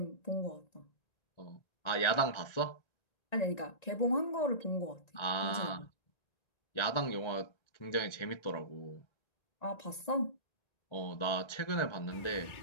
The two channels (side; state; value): right; late; 1.9 ms